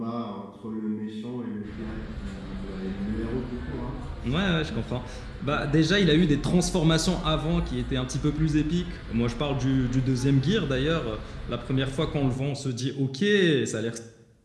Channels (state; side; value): identical; both; correlation 1.00